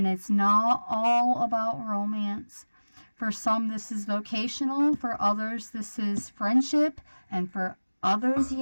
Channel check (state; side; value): inverted; both; correlation -1.00